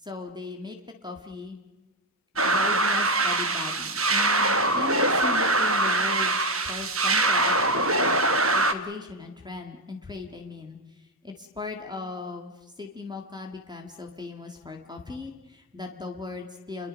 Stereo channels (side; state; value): both; normal; correlation 0.10